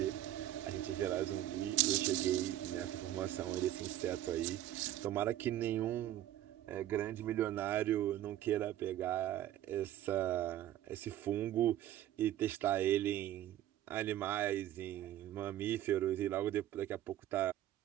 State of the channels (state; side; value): quieter; left; 12.9 dB